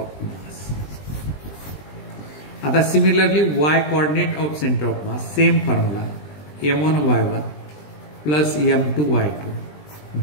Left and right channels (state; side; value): late; right; 20 ms